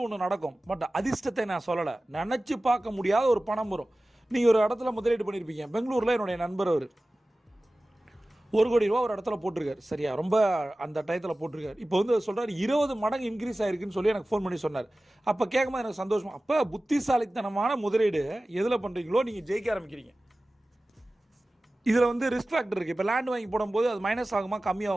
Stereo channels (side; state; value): both; normal; correlation 0.97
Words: ஒன்று நடக்கும். பட் அதிர்ஷ்டத்தை நான் சொல்லலை, நினச்சி பார்க்க முடியாத ஒரு பணம் வரும். நீங்கள் ஒரு இடத்துல முதலீடு பண்ணியிருப்பீங்க. பெங்களூரில் என்னுடைய நண்பர் அவர் 1 கோடி ரூபா ஒரு இடத்துல போட்டிருக்காரு. சரியா, ரொம்ப அந்த டயத்தில் போட்டிருக்காரு. இப்போ வந்து சொல்கிறார் 20 மடங்கு இன்க்ரீஸ் ஆகிருக்குன்னு சொல்லி எனக்கு ஃபோன் பண்ணி சொன்னார். அப்போ கேட்கும்போது எனக்கு சந்தோஷமா. அப்போ புத்திசாலித்தனமான முதலீடு எதில் பண்ணுறீங்களோ நீங்கள் ஜெயிக்க ஆரம்பிக்கிறீங்க. இதில் வந்து ரிஸ்க் ஃபேக்டர் இருக்குது. இப்போ லேண்ட் வாங்கி போடும்போது அது மைனஸ் ஆகுமா